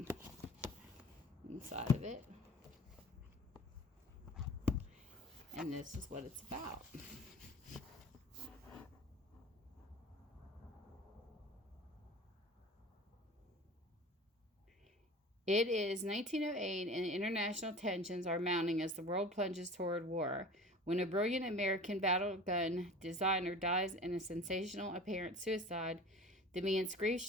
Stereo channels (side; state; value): both; normal; correlation 0.40